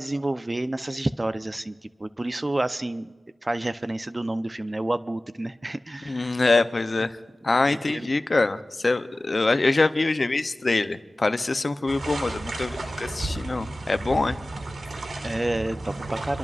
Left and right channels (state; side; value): normal; both; correlation 0.97